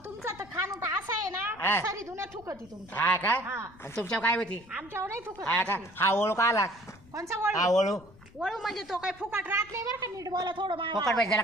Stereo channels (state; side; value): noise; left; rumble, 24 dB below the sound